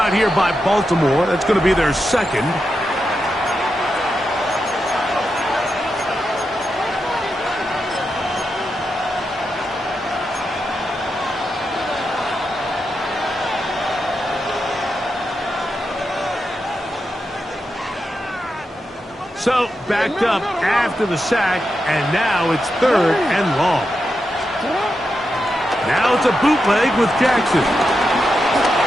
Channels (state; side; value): normal; both; correlation 0.87